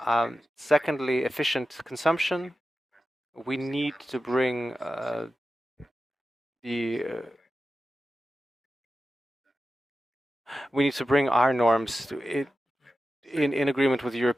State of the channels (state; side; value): normal; both; correlation 0.93